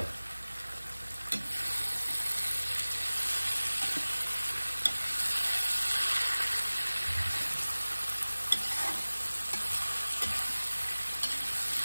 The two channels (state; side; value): inverted; both; correlation -1.00